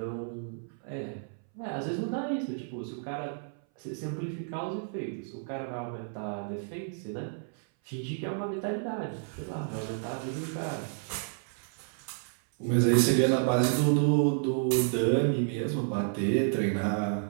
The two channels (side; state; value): left; silent; 57 dB below the other